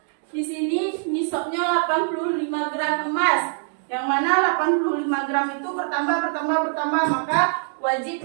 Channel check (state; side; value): silent; left; 60 dB below the other